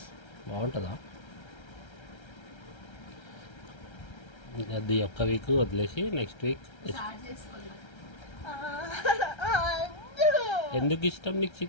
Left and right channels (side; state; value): right; late; 1.3 ms